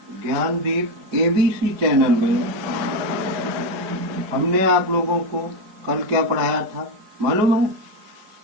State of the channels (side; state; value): left; late; 4.9 ms